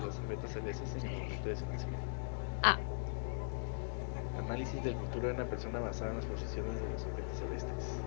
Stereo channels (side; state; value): right; silent; digital silence